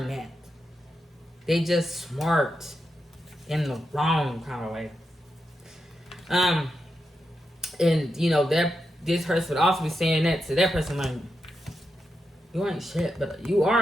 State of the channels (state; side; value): normal; both; correlation 0.87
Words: that. They just smart in the wrong kind of way. And that this person would also be saying that to that person, like, you ain't shit, but you